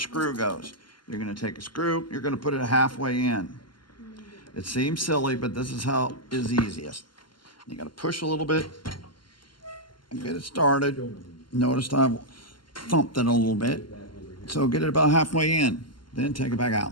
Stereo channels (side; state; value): right; late; 0.72 ms